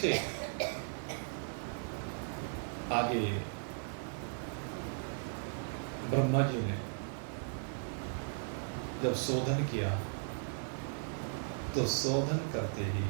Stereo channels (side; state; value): left; silent; digital silence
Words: आगे ब्रह्मा जी ने जब शोधन किया तो शोधन करते ही